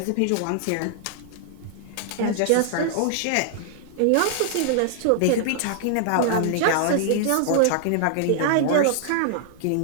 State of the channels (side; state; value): both; different; correlation -0.01